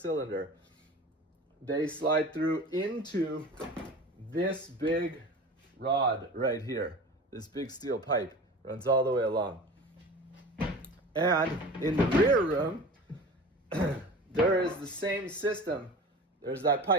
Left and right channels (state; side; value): normal; both; correlation 0.36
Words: They slide through into this big rod right here. This big steel pipe runs all the way along. And in the rear room, there is the same system. There's that